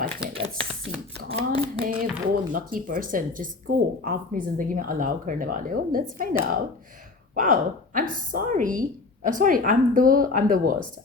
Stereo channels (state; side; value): quieter; right; 3.8 dB